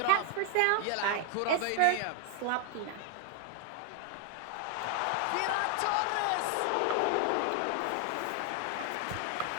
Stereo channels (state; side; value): different; both; correlation 0.00